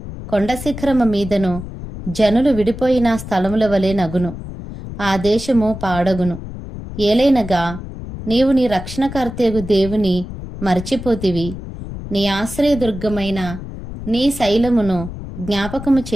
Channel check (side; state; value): left; noise; rumble, 10 dB below the sound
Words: కొండ శిఖరము మీదను జనులు విడిపోయిన స్థలముల వలె నగును. ఆ దేశము పాడగును. ఏలైనగా నీవు నీ రక్షణకర్తయగు దేవుని మరచిపోతివి, నీ ఆశ్రయదుర్గమైన నీ శైలమును జ్ఞాపకము